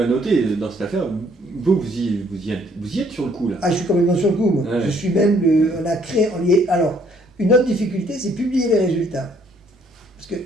noter dans cette affaire. Vous y êtes sur le coup, là. Ah, je suis complètement sur le coup, moi. Ouais. Je suis même, on a créé, alors, une autre difficulté, c'est publier les résultats. Parce que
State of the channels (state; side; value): normal; both; correlation 0.64